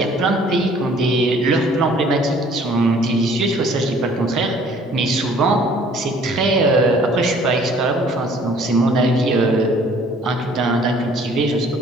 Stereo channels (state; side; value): normal; both; correlation 0.56